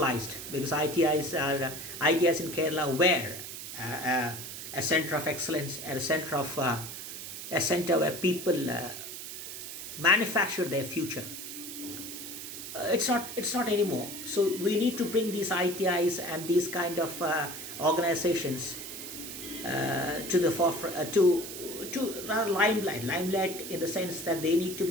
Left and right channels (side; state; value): right; noise; hiss, 9 dB below the sound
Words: because ITIs in Kerala were a center of excellence and a center where people manufacture their future. It's not anymore. So we need to bring these ITIs and these kind of organizations to the forefront, to limelight in the sense that they need to